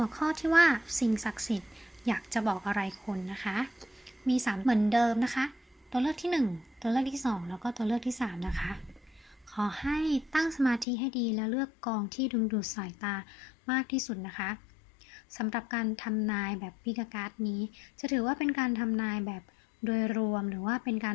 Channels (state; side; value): drops out; right; at 10.9 s